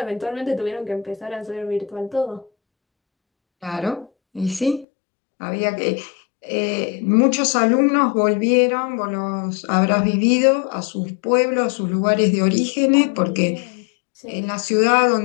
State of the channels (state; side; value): drops out; right; at 4.9 s